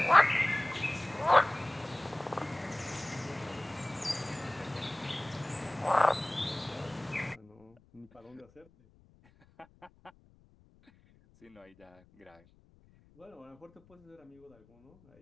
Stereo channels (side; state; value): left; noise; rumble, 29 dB below the sound